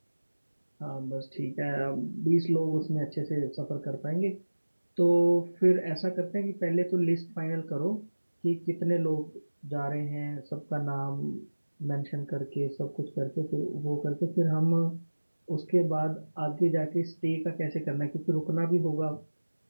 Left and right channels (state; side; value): inverted; both; correlation -1.00